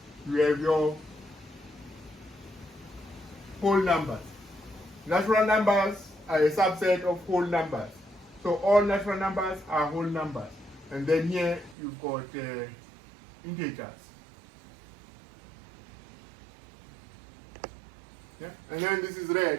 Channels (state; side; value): drops out; left; at 11.8 s